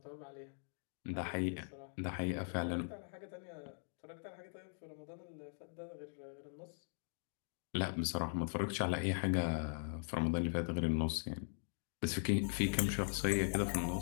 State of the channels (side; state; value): right; silent; digital silence